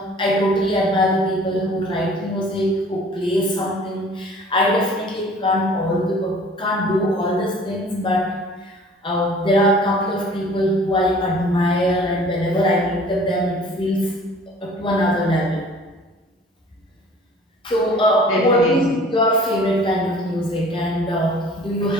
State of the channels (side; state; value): both; normal; correlation 0.49